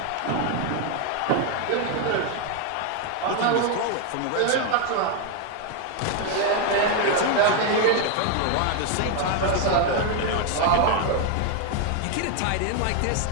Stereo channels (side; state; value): both; different; correlation 0.01